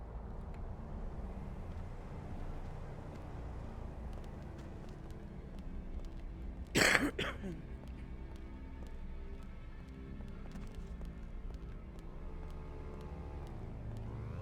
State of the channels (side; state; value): both; identical; correlation 1.00